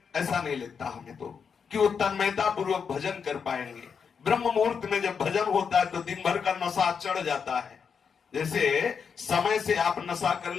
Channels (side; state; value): right; quieter; 6.4 dB